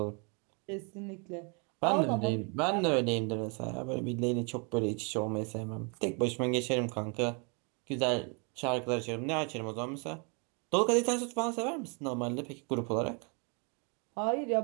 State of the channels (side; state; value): left; quieter; 35.0 dB